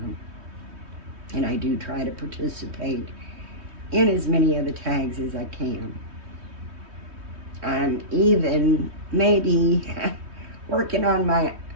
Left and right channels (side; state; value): left; late; 3.2 ms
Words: And I do try to participate in as many of the tags as I can. I'm even maybe working on my